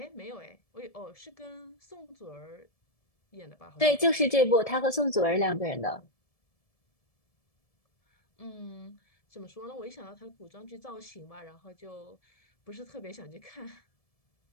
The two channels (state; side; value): late; right; 1.7 ms